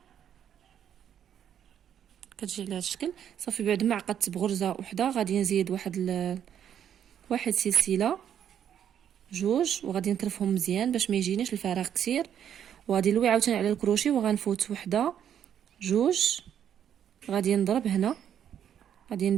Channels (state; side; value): quieter; left; 9.4 dB